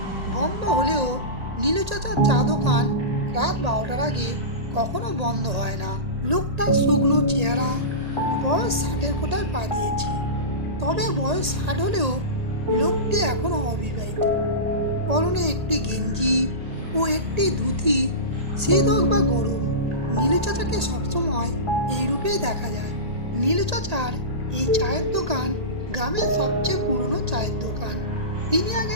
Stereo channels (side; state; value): left; late; 1.8 ms